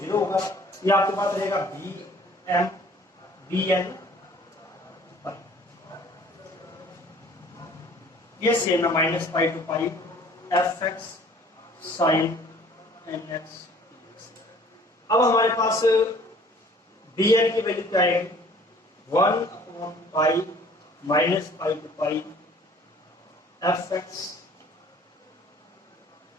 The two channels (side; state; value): both; normal; correlation 0.53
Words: 0 होगा। ये आपके पास रहेगा b m b n पाई। ये सेम है, minus pi to pi f x sine N x. अब हमारे पास बी एन की वैल्यू क्या आएगी, 1 upon pi minus pi to pi f x